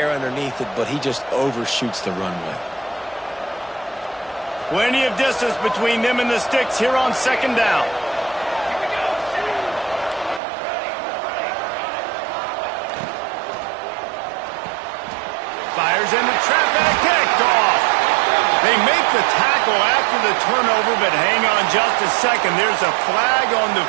underneath it, but he just overshoots the runway. Plenty of distance between them and the sticks here on second down. Fires in the trap and kicked off. They make the tackle after the turnover, but hang on just a second. There's a flag on the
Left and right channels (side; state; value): left; drops out; at 10.4 s